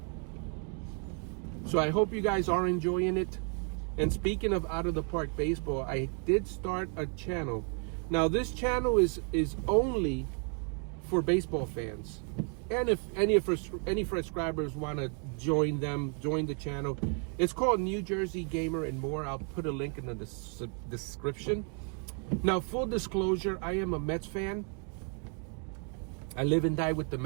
So I hope you guys are enjoying it. And speaking of out of the park baseball, I did start a channel. Now this channel is only for baseball fans. And if any subscribers want to join the channel, it's called New Jersey Gamer and More. I'll put a link in the description. Now, full disclosure, I am a Mets fan. I live and die with the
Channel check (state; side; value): quieter; left; 39.5 dB